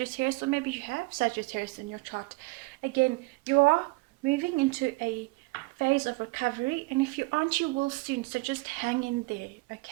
or maybe you have Sagittarius in your chart. Again, you are moving into a phase of recovery, and if you aren't, you will soon. So just hang in there,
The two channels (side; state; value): left; quieter; 24.9 dB